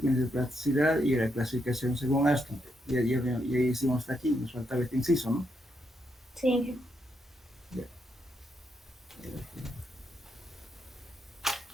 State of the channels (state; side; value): normal; both; correlation 0.79